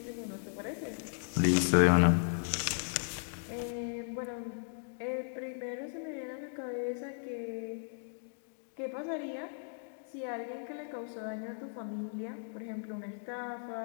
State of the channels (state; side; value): silent; right; digital silence